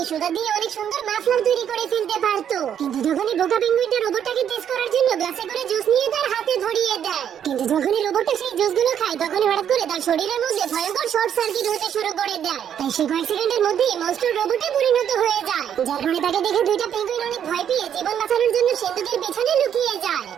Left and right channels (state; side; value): quieter; left; 9.1 dB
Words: সুতা দিয়ে অনেক সুন্দর মাফলার তৈরি করে ফেলতে পারতো। কিন্তু যখনই বোকা পেঙ্গুইনটা রোবটটাকে টেস্ট করার জন্য গ্লাসে করে জুস নিয়ে তার হাতে ধরিয়ে দেয়, কিন্তু যখনই রোবটটা সেই জুসগুলো খায় তখনই হঠাৎ করে তার শরীরের মধ্যে ভয়ঙ্কর শর্ট সার্কিট হতে শুরু করে দেয়। তাই সে কয়েক সেকেন্ডের মধ্যেই মনস্টার রোবটে পরিণত হয়ে যায়, যার ফলে তাকে দেখে দুইটা পেঙ্গুইন অনেক ভয় পেয়ে জীবন বাঁচানোর জন্য সিন্দুকের পেছনে লুকিয়ে যায়।